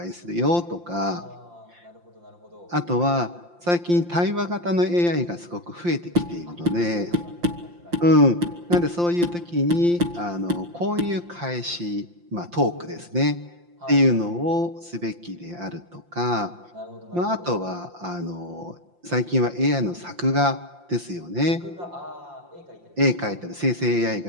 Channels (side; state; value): left; late; 5.8 ms